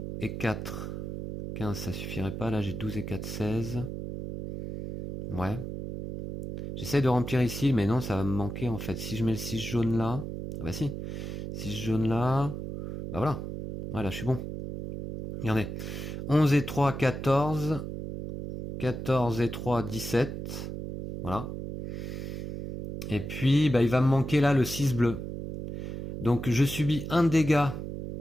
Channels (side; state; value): right; noise; hum, 6 dB below the sound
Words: et 4. 15, ça suffirait pas. Là, j'ai 12 et 4, 16. Ouais. J'essaie de remplir ici, mais non, ça va me manquer en fait. Si je mets le 6 jaune là... Ah bah si. 6 jaune là... Bah voilà. Voilà, je suis bon. Regardez. 11 et 3, 14. 14 et 3, 17. Voilà. Et puis, bah, il va me manquer là le 6 bleu. Donc, je subis un dégât,